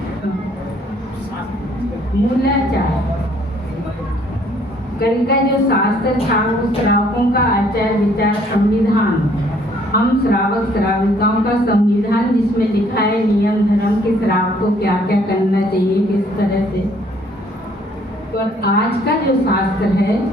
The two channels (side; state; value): both; normal; correlation 0.62